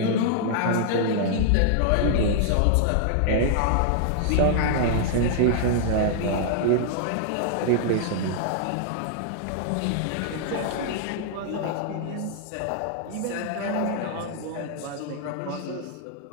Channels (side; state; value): both; different; correlation -0.01